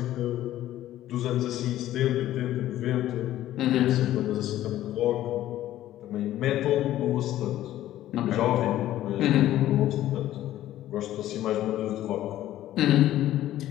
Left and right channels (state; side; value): quieter; right; 13.6 dB